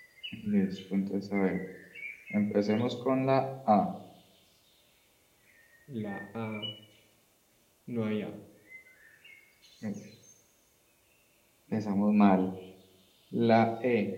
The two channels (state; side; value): identical; both; correlation 1.00